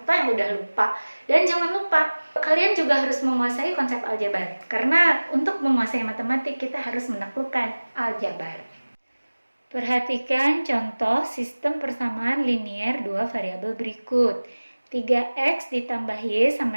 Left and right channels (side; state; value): both; inverted; correlation -1.00